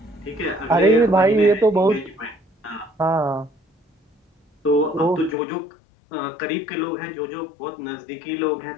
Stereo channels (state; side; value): drops out; right; at 5.4 s